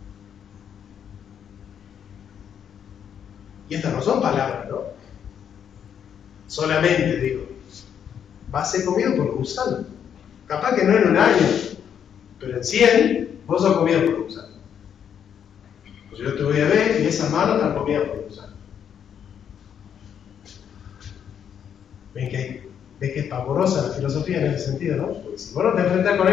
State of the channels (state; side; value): quieter; right; 8.4 dB